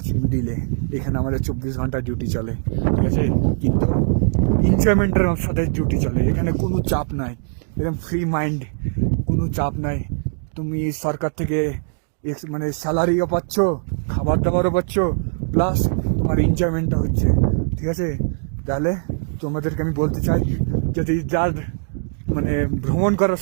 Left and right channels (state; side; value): silent; left; digital silence